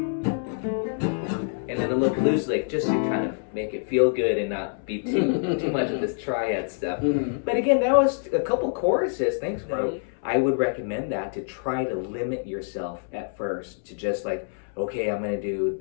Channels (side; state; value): right; silent; 61 dB below the other